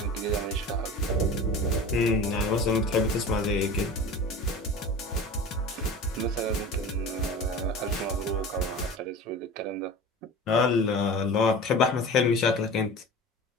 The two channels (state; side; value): normal; both; correlation 0.35